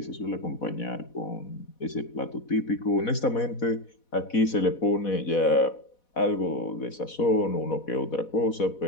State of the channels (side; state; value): right; late; 4.1 ms